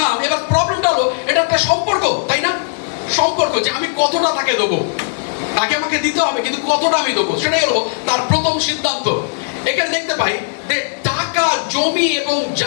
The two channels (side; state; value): right; silent; 68 dB below the other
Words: এবার প্রবলেমটা হলো এটা একটা সম্পর্ক, তাই না? সম্পর্ক যে আমি কতটা তাকে দেবো, তাকে আমাকে দিতে হবে, কিন্তু কতটা আমি দেবো, সেটাই হলো তার প্রথম সিদ্ধান্ত। এখানে দেখতে পাই যে টাকা, জমি এবং